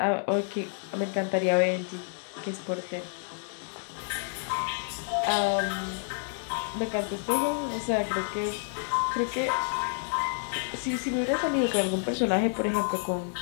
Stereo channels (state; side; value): silent; right; 58 dB below the other